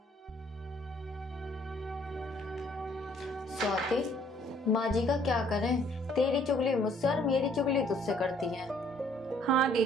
स्वाति, माँ जी का क्या करें? तेरी चुगली मुझसे और मेरी चुगली तुझसे करती है। हाँ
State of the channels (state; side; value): normal; both; correlation 0.62